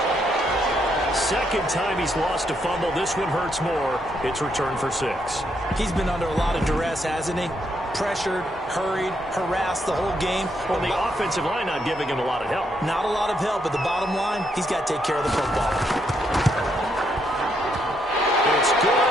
He's lost a fumble. This one hurts more. It's returned for 6. He's been under a lot of duress, hasn't he? Pressured, hurried, harassed the whole game. Well, the offensive line not giving him a lot of help. Not a lot of help, but the bottom line, he's got to take care of the football. It's good,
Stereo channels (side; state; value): both; normal; correlation 0.76